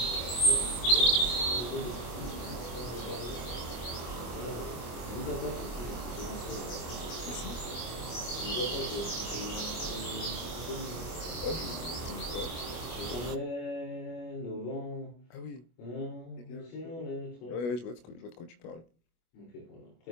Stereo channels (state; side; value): late; right; 25 ms